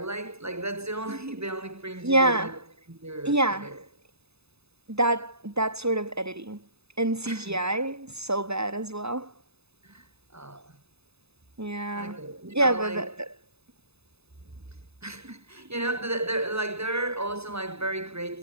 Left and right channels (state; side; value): late; left; 0.79 ms